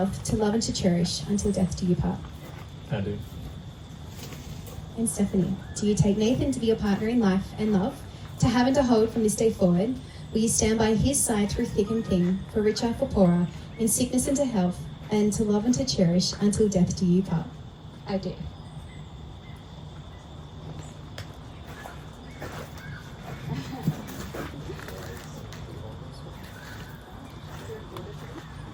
to love and to cherish, until death do you part? I do. And Stephanie, do you take Nathan to be your partner in life and love, to have and to hold from this day forward? Will you stand by his side through thick and thin, for richer, for poorer, in sickness and to health, and to love and to cherish, until death do you part? I do.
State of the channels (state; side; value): identical; both; correlation 1.00